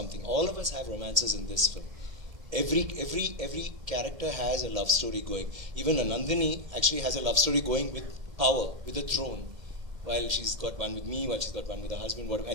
All of us have romances in this film. Every character has a love story going. Even Nandini actually has a love story going with power, with the throne. While she's got one with me, while she's got one with her husband,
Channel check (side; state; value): left; late; 2.1 ms